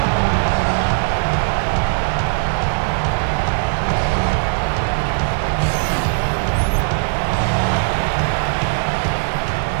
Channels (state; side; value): silent; left; digital silence